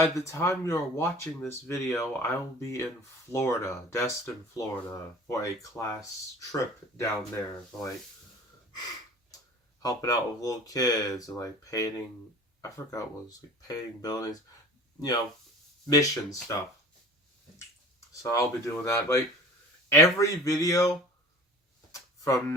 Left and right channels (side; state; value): both; normal; correlation 0.43